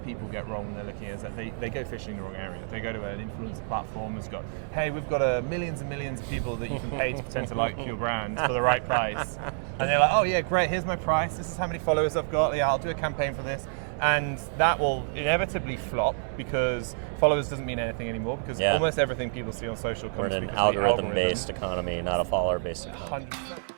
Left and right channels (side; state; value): left; silent; 59 dB below the other